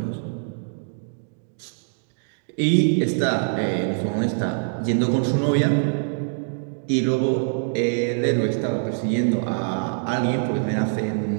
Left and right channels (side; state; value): left; silent; digital silence